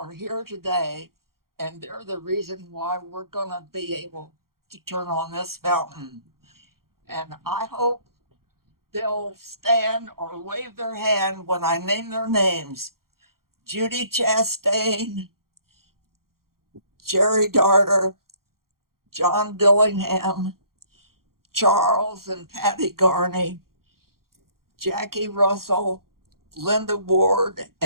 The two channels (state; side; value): late; left; 0.93 ms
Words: here today, and they're the reason why we're going to be able to turn on this fountain. And I hope they'll stand or wave their hand when I name their names. Judy Chastain, Jerry Darter, John Dillingham, Charles and Patty Garney, Jackie Russell, Linda Ward,